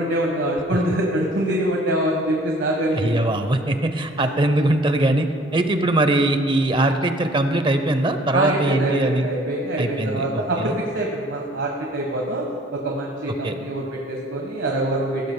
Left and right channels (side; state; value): both; normal; correlation 0.54